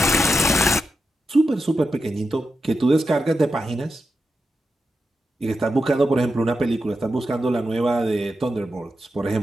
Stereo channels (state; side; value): normal; both; correlation 0.88